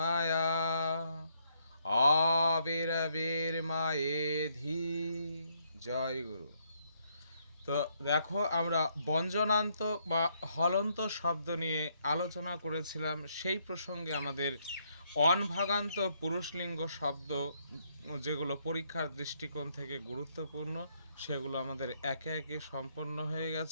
আবির্বির্মায়েধি। জয় গুরু। তো দেখো আমরা ব্যঞ্জনান্ত বা হলন্ত শব্দ নিয়ে আলোচনা করেছিলাম। সেই প্রসঙ্গে আমাদের অনভাগান্ত পুরুষলিঙ্গ শব্দ যেগুলো পরীক্ষার দৃষ্টিকোণ থেকে গুরুত্বপূর্ণ সেগুলো আমাদের একে একে সম্পন্ন হয়ে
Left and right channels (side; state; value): both; inverted; correlation -0.73